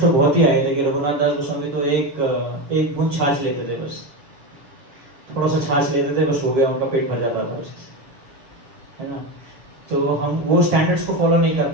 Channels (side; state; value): left; late; 7.4 ms